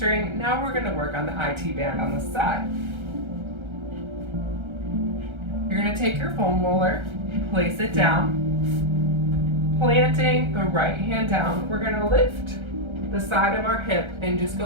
Now we're going to work on the IT band on the side. You're going to take your foam roller, place it down, planting the right hand down. We're going to lift the side of our hip and just go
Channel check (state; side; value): late; left; 1.3 ms